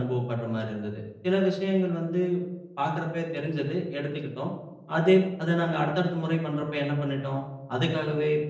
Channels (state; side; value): identical; both; correlation 1.00